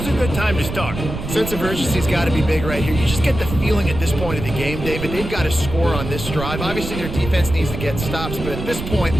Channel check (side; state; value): right; noise; rumble, 7 dB below the sound